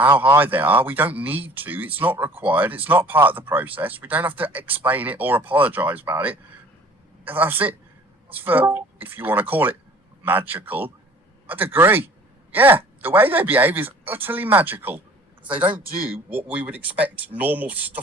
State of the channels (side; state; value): both; normal; correlation 0.50